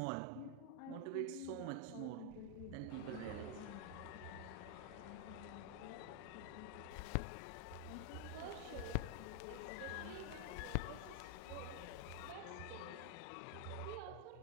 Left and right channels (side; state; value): both; different; correlation 0.01